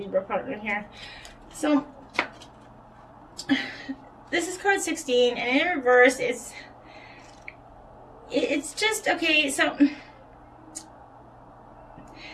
partner here. So this is card 16, and in reverse, it's just, okay, so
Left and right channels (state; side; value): identical; both; correlation 1.00